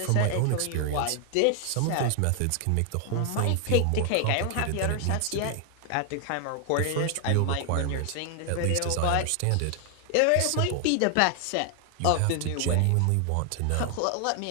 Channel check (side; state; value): both; different; correlation 0.00